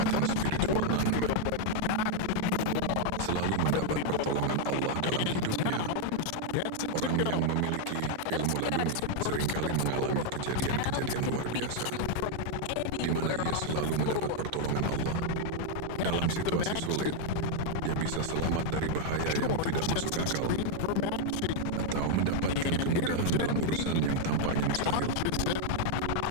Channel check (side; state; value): both; different; correlation 0.00